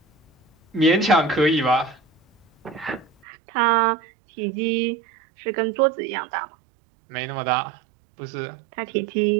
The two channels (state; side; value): drops out; left; at 3.1 s